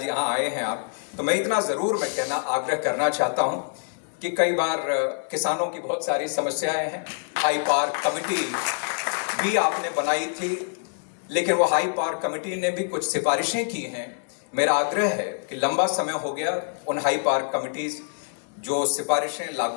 यहाँ आए हैं आप, तो मैं इतना ज़रूर आग्रह करना चाहता हूँ कि कई बार किसानों की बहुत सारी समस्याएं हैं। हाई पावर कमेटी भी आपने बनाई थी, लेकिन वो हाई पावर कमेटी ने भी कुछ सिफारिशें की हैं। मेरा आग्रह है कि लंबा समय हो गया, उन हाई पावर कमिटीज जो सिफारिशें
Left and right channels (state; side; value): silent; right; digital silence